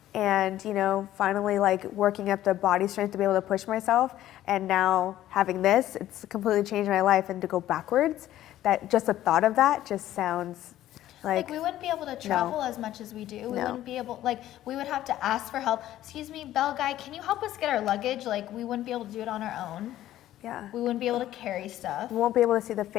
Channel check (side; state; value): right; quieter; 13.4 dB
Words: and you know, finally like working up the body strength to be able to push myself, and now having this, it's completely changed my life. And to go backwards, that just the thought of that just sounds like we wouldn't be able to travel as much as we do. We wouldn't be able, like, we would have to ask for help. Excuse me, bell guy, can you help us get our luggage? Like, we wouldn't be able to do it on our own. yeah. We wouldn't be able to carry stuff. We won't be able to see the